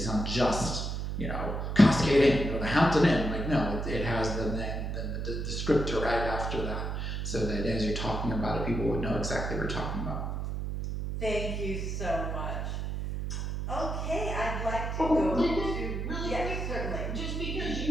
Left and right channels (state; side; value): noise; right; hum, 3 dB below the sound